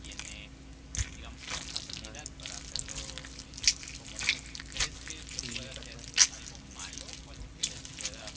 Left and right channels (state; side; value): identical; both; correlation 1.00